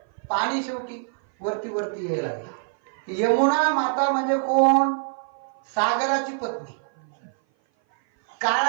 पाणी शेवटी वरती वरती यायला लागले. यमुना माता म्हणजे कोण? सागराची पत्नी,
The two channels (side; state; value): left; silent; 57 dB below the other